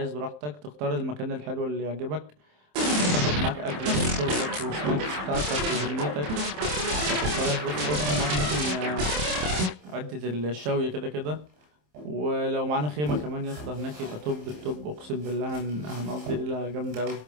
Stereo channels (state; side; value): late; left; 27 ms